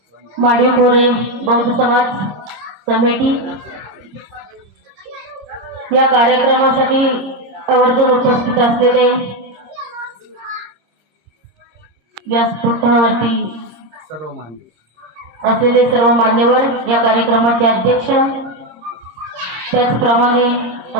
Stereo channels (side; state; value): left; late; 26 ms